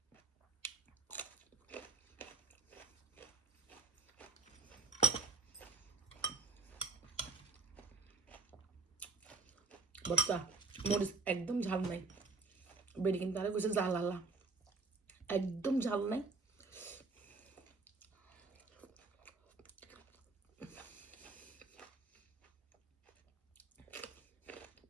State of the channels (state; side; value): quieter; left; 4.0 dB